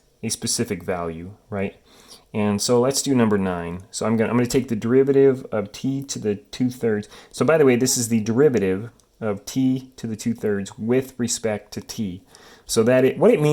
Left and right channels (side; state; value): both; identical; correlation 1.00